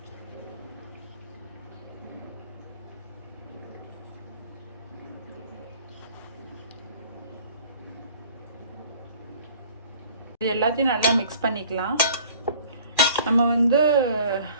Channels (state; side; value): inverted; both; correlation -0.50